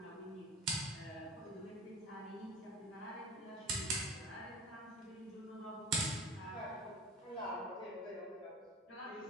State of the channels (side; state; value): both; normal; correlation 0.36